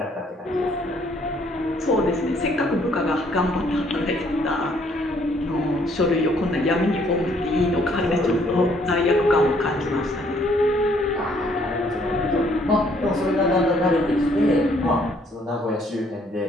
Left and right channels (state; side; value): normal; both; correlation 0.65